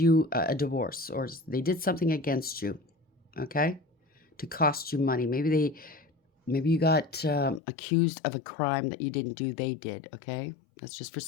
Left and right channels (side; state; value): right; drops out; at 7.6 s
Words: a divorce, or they did something against you, okay, to cost you money. Maybe you got accused of a crime that you didn't do. They did, okay? That's just for